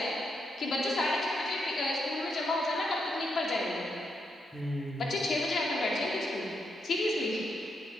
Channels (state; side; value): normal; both; correlation 0.81